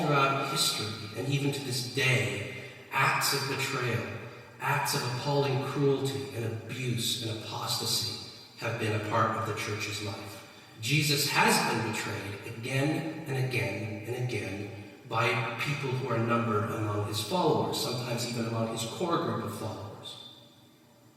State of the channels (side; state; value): both; identical; correlation 1.00